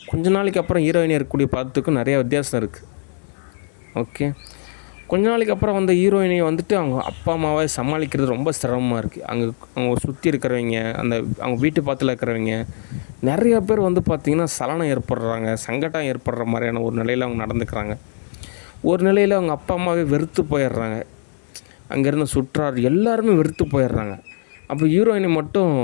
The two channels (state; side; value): silent; right; digital silence